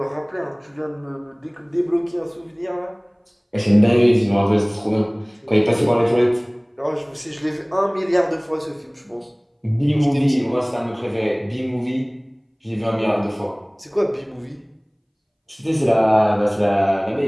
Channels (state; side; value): identical; both; correlation 1.00